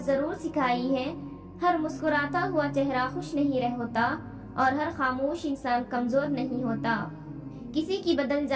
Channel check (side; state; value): both; identical; correlation 1.00